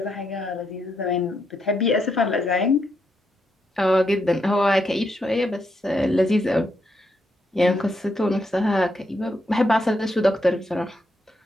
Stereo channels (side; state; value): both; normal; correlation 0.80